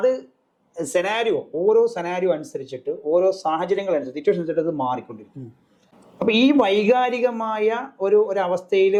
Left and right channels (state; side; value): identical; both; correlation 1.00